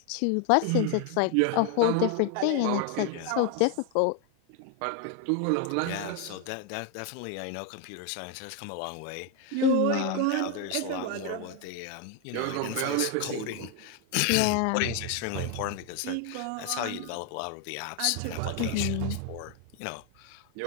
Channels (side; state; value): both; different; correlation 0.01